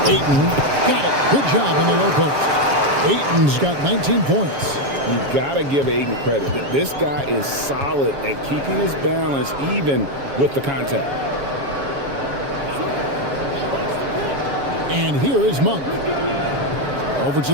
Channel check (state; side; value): late; left; 7.2 ms